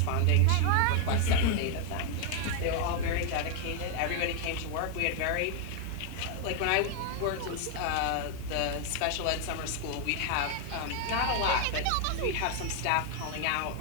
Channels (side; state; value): both; different; correlation 0.00